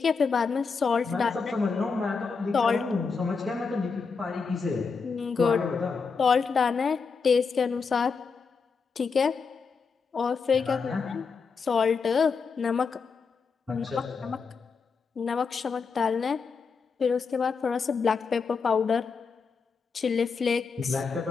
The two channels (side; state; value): right; quieter; 5.2 dB